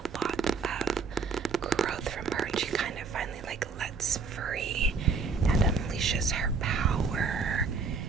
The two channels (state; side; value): quieter; left; 4.8 dB